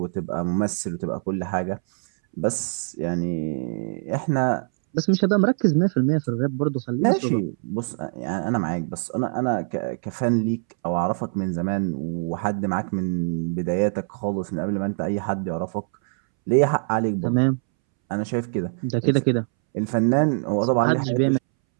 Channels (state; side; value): silent; left; 63 dB below the other